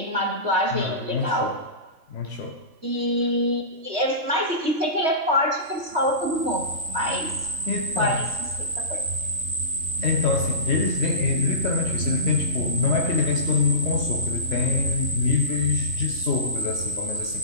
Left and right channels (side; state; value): left; late; 3.2 ms